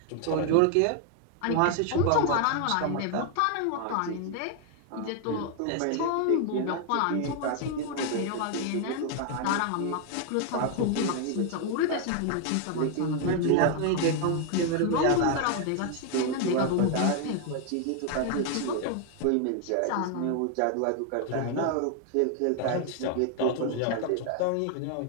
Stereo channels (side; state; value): both; different; correlation 0.00